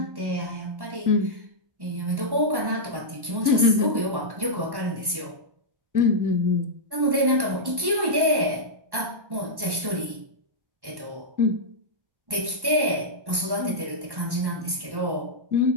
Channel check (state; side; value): late; left; 1.1 ms